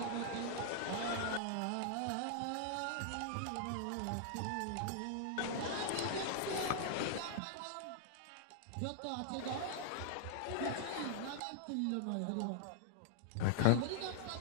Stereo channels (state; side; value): different; both; correlation -0.01